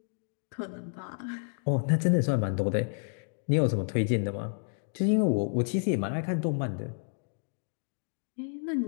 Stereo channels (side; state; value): right; silent; digital silence